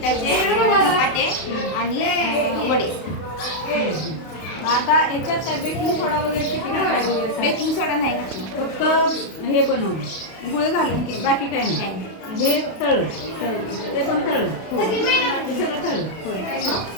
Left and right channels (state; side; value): late; right; 32 ms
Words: धपाटे आणि वडे. आता याच्यात काय बेकिंग सोडा वगैरे किती घालायला वगैरे बेकिंग सोडा नाही घातला, फक्त हे बनवलं गुळ घालून केलं. बाकी काय नाही. हे तळलं ते पण तळलं हे सगळं तळलं